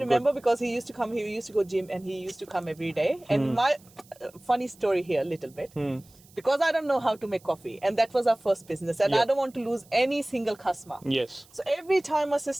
remember because he used to come. He used to go gym and he used to come every day. And my funny story here, a little bit, because I don't know how to make coffee, and that was our first business, and I don't want to lose any single customer. Yes. So every time my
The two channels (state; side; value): noise; right; hiss, 27 dB below the sound